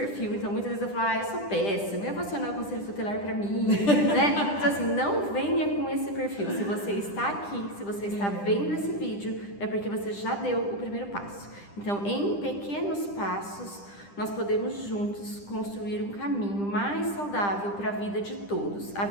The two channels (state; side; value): late; right; 10 ms